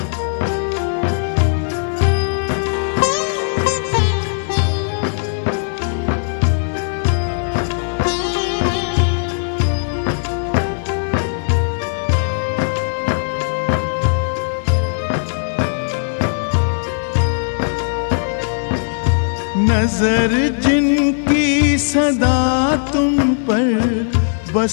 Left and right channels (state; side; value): silent; right; 56 dB below the other